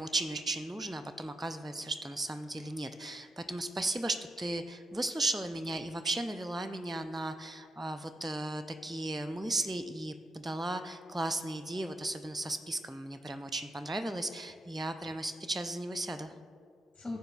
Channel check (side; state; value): both; normal; correlation 0.83